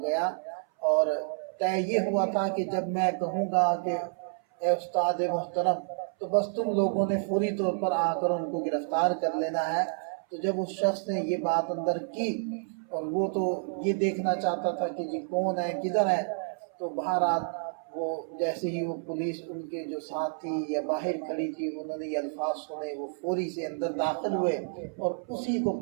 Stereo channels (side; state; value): left; silent; 58 dB below the other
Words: گیا، اور طے یہ ہوا تھا کہ جب میں کہوں گا کہ اے استاد محترم، تو بس تم لوگوں نے فوری طور پر آ کر ان کو گرفتار کر لینا ہے۔ تو جب اس شخص نے یہ بات اندر کی، اور وہ تو یہ دیکھنا چاہتا تھا کہ جی کون ہے، کدھر ہے، تو بہرحال وہ جیسے ہی وہ پولیس ان کے جو ساتھ تھی یا باہر کھڑی تھی، انہوں نے یہ الفاظ سنے، وہ فوری سے اندر داخل ہوئے اور اسی کو